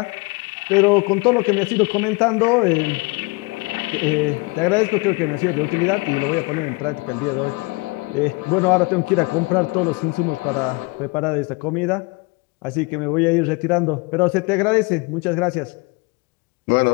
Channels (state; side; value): quieter; right; 26.8 dB